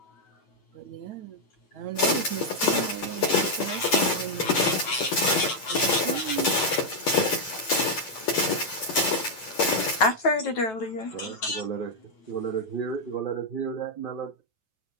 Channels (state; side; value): late; right; 9.1 ms